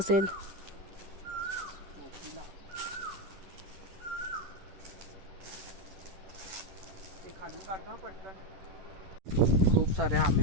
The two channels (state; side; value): late; left; 11 ms